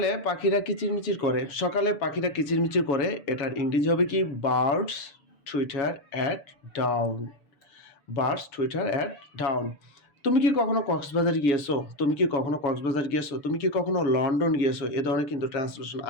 পাখিরা কিচিরমিচির করে। সকালে পাখিরা কিচিরমিচির করে, এটার ইংরেজি হবে কি? Birds Twitter at dawn. Birds Twitter at dawn. তুমি কি কখনো কক্সবাজার গিয়েছো? তুমি কি কখনো কক্সবাজার গিয়েছো? তুমি কি কখনো লন্ডন গিয়েছো? এ ধরনের কিন্তু ট্রান্সলেশন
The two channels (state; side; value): late; right; 7.0 ms